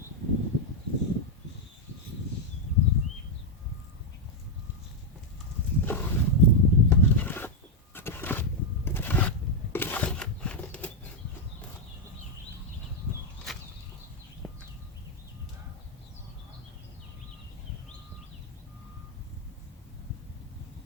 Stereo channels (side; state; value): both; normal; correlation 0.00